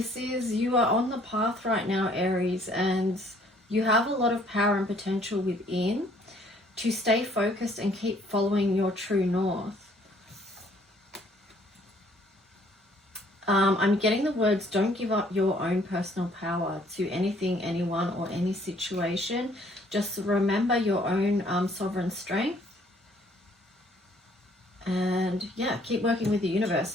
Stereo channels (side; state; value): both; normal; correlation 0.61